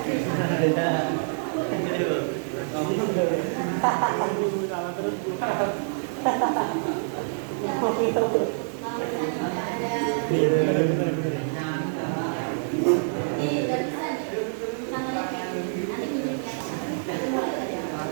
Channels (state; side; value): silent; left; digital silence